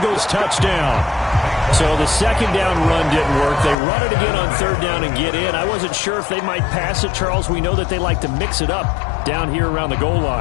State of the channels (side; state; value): right; drops out; at 3.8 s